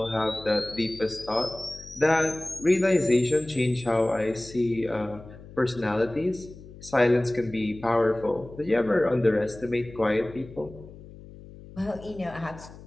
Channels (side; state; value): left; noise; hum, 18 dB below the sound